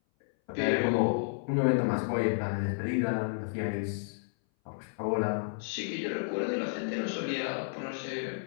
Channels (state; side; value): silent; right; 57 dB below the other